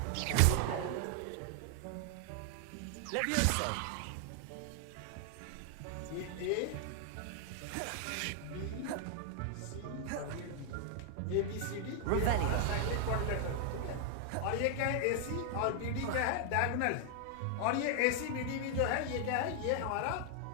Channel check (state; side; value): different; both; correlation 0.00